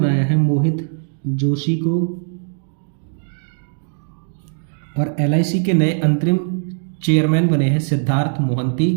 है मोहित जोशी को, और एलआईसी के नए अंतरिम चेयरमैन बने हैं सिद्धार्थ मोहंती,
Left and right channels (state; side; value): silent; left; digital silence